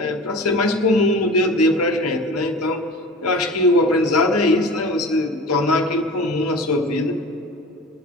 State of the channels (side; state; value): both; normal; correlation 0.37